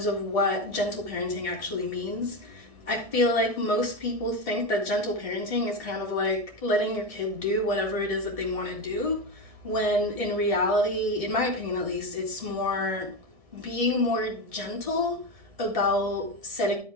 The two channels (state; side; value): late; left; 1.6 ms